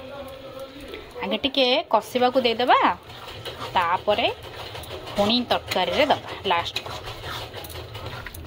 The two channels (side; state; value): both; identical; correlation 1.00